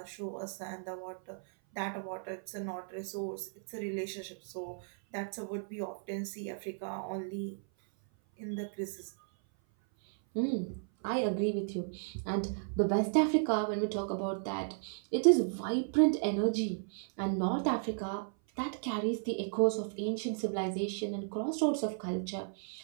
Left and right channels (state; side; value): silent; left; 55 dB below the other